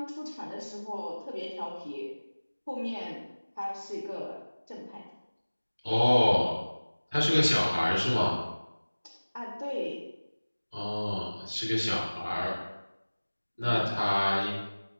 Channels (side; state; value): both; inverted; correlation -1.00